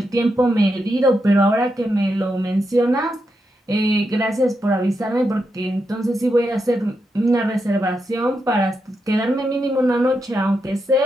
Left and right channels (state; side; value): normal; both; correlation 0.84